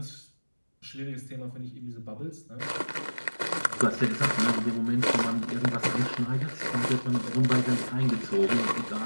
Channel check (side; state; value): both; inverted; correlation -1.00